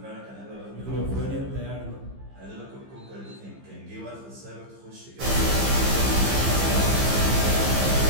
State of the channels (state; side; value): late; left; 15 ms